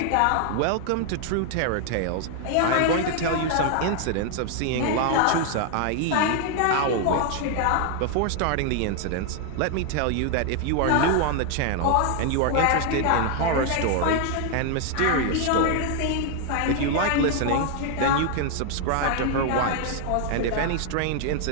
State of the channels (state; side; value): different; both; correlation 0.00